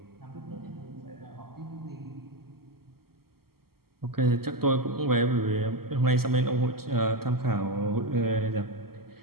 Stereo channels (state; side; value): late; left; 0.95 ms